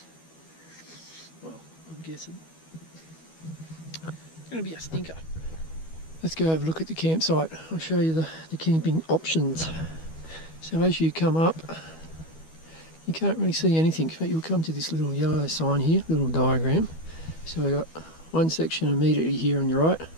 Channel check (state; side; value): late; right; 12 ms